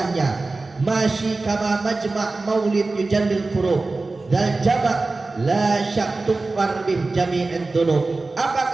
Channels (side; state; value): left; quieter; 3.5 dB